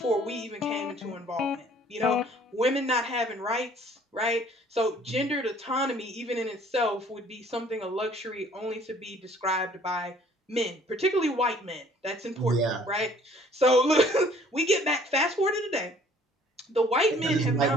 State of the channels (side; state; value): both; normal; correlation 0.56